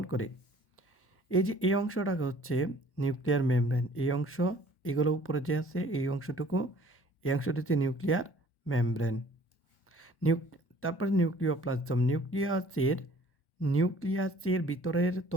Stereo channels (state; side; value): late; right; 1.1 ms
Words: করে। এই যে এই অংশটা হচ্ছে নিউক্লিয়ার মেমব্রেন। এই অংশ, এগুলো উপরে যে আছে এই অংশটুকু, এই অংশটি হচ্ছে নিউক্লিয়ার মেমব্রেন। তারপরে নিউক্লিওপ্লাজম। নিউক্লিয়াসের ভিতরের